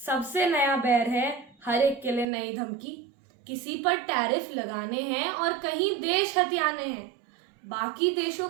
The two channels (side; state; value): left; drops out; at 2.2 s